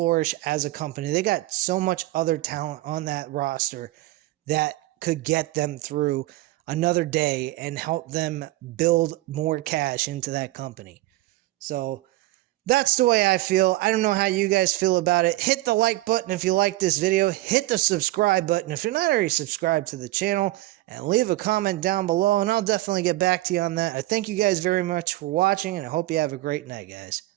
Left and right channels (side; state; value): left; quieter; 17.7 dB